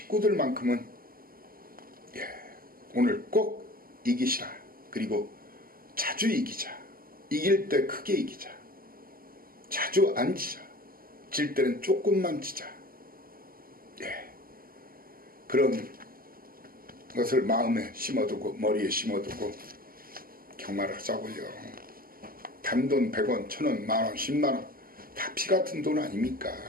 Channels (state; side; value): late; left; 0.42 ms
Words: 오늘 꼭 이기시라. 그리고 자주 이기자. 이길 때 크게 이기자. 자주 안 지자. 질 때는 조금만 지자. 그런 것을 마음에 심어두고 머리에 심어두고 경마를 하자고요. 단돈 100원, 1000원, 만원, 10만원 다 피같은 돈 아닙니까?